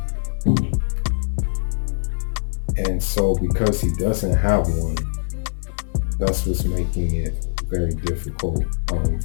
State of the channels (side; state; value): right; silent; digital silence